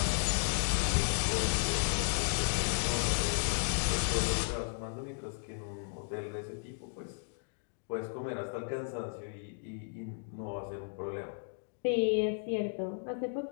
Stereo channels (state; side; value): silent; right; digital silence